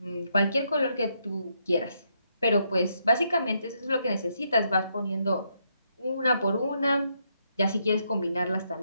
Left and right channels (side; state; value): both; inverted; correlation -0.77